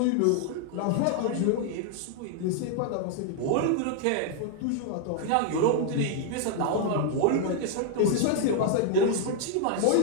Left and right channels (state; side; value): different; both; correlation 0.00